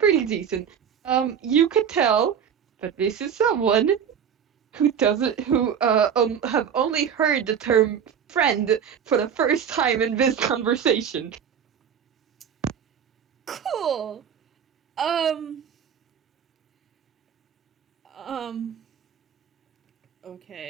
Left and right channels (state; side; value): quieter; left; 7.9 dB